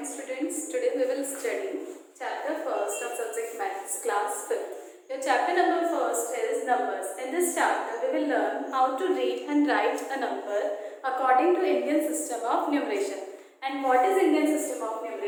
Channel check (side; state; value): both; identical; correlation 1.00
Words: morning students. Today we will study chapter first of subject maths class 5th. Your chapter number first is numbers. In this chapter we will learn how to read and write a number according to Indian system of numeration. And what is Indian system of